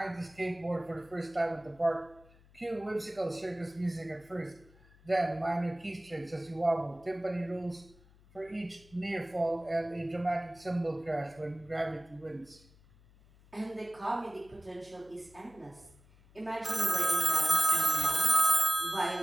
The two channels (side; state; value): left; noise; hum, 27 dB below the sound